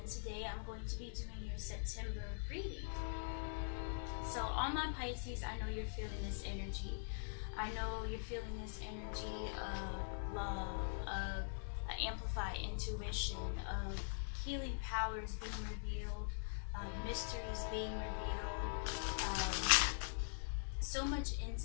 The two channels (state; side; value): silent; right; digital silence